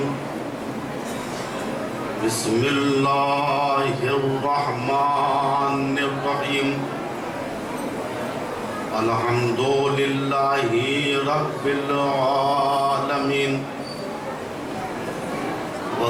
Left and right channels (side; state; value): both; identical; correlation 1.00